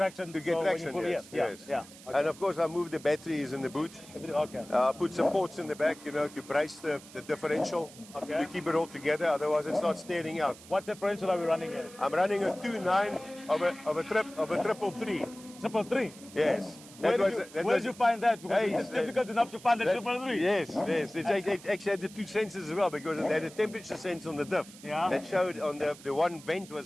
To get so when traction, you pull, yes, yes. Yeah. Okay. And of course, I move the batteries in the boot. Okay. Put some ports in the back, you know, to brace the differential, Okay. to keep it all together. Otherwise, it starts staring out. What differential are we running here? I'm running a 2.9 of a 333. 333. Yes. Where did you find that? Because Hey, it's difficult enough to find the 333. Yes, yes. It actually had the 2 sensors as well because it had a temperature sense on the diff. Yeah. That showed on the one vent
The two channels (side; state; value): right; noise; hiss, 19 dB below the sound